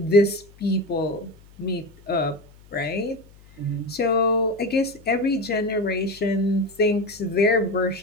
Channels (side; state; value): left; noise; hum, 25 dB below the sound